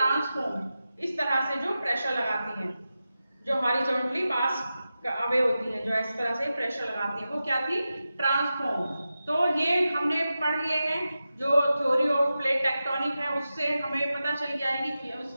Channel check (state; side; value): inverted; both; correlation -0.92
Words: इस तरह से जो प्रेशर लगाती हैं, जो हॉरिजॉन्टली पास अवे होती हैं, जो इस तरह से प्रेशर लगाती हैं, वो क्या थी? ट्रांसफॉर्म। तो ये हमने पढ़ लिए हैं। जो थ्योरी ऑफ प्लेट टेक्टोनिक है उससे हमें पता चल गया है कि